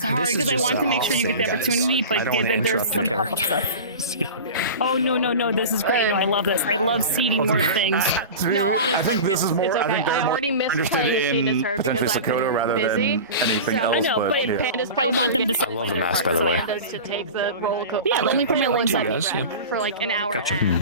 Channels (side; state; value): both; inverted; correlation -0.32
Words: hard because I want to make sure you get the opportunity, but there's some pop stuff. Oh no! This is great. No, I love this. I love seeding more things. No, honestly, I think this is more. it's okay. I think they're I more already missed interested playing in her potentially because I've been Sakoto rather busy. than anything So, else. I know, but yeah. Panda's I want them to. I love the mask, by the way. To take the roller coaster. Yeah, let me put my legs on. For like an hour Gotcha. and a